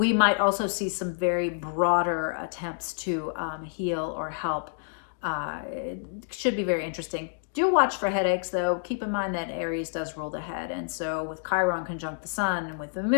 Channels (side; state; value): right; silent; digital silence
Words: might also see some very broader attempts to heal or help. It should be very interesting. Do watch for headaches, though. Keep in mind that Aries does rule the head. And so with Chiron conjunct the sun and with the